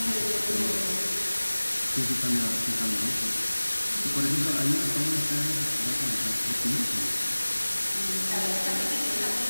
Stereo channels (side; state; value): both; inverted; correlation -1.00